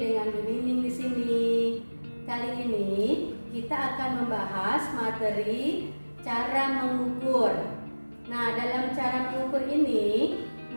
Bu Nining di sini. Kali ini kita akan membahas materi cara mengukur. Nah, dalam cara mengukur ini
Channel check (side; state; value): both; inverted; correlation -1.00